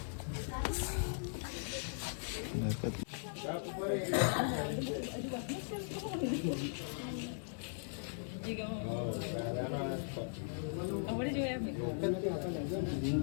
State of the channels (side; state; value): right; silent; digital silence